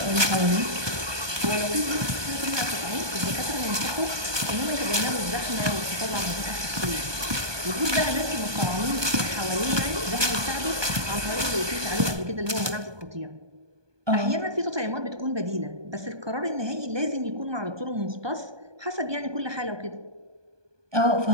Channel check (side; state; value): left; late; 1.2 ms